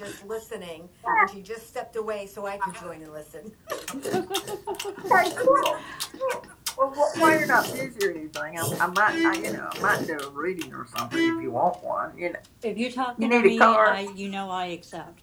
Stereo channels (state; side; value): identical; both; correlation 1.00